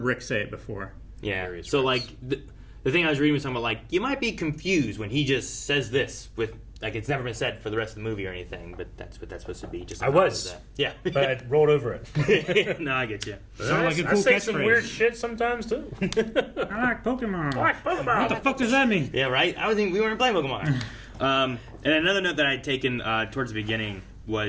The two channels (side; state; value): both; identical; correlation 1.00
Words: say it before. Yeah. So like the thing I was reading was talking about like you might be confused when he just says this with like it's never been said for the rest of the movie or anything, but that's what that's supposed to be. Just a I nod was. to that. Yeah. But I rolled over it. No, I get you. Sounds like a cool I say catchphrase. some weird shit sometimes too. I like Pokemon. I like Pokemon. What the fuck does that mean? Yeah, right. I was thinking we weren't playing Pokemon. And another note that I had taken towards the beginning